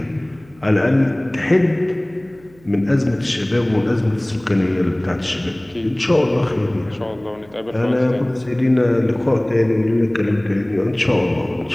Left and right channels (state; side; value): noise; right; hum, 27 dB below the sound